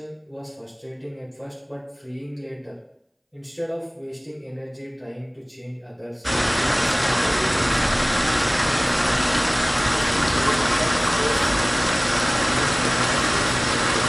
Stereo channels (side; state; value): both; identical; correlation 1.00